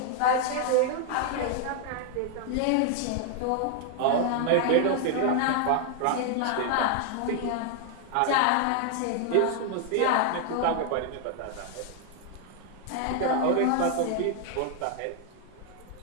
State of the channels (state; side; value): different; both; correlation 0.00